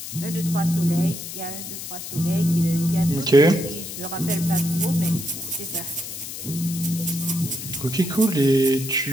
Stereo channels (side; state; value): left; noise; hiss, 9 dB below the sound